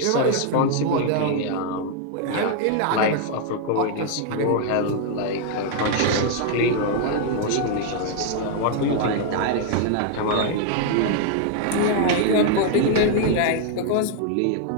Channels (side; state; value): both; different; correlation 0.00